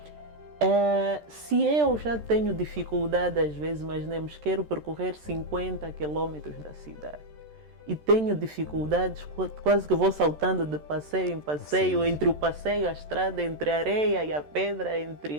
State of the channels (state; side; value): late; left; 13 ms